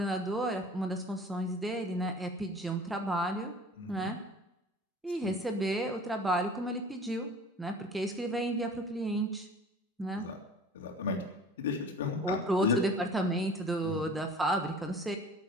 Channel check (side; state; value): both; normal; correlation 0.44